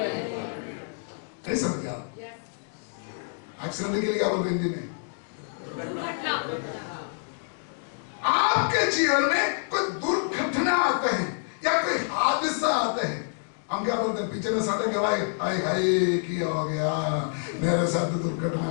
नहीं समझ आप? एक्सीडेंट के लिए क्या बोलते हैं हिंदी में? आपके जीवन में कोई दुर्घटना आते हैं या कोई हादसा आते हैं, हम क्या बोलते हैं? पिछले साढ़े के भाई हाय हाय क्या हो गया, मेरे साथ दुर्घटना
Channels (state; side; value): silent; right; digital silence